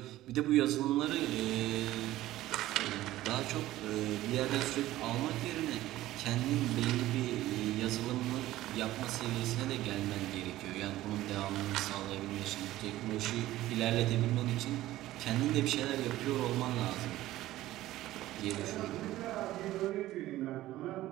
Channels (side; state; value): left; quieter; 15.5 dB